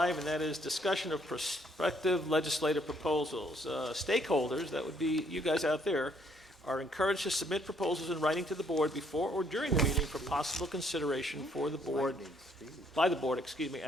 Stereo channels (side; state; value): both; normal; correlation 0.67